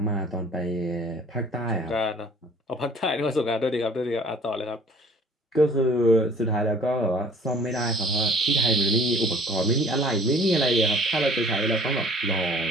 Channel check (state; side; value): normal; both; correlation 0.52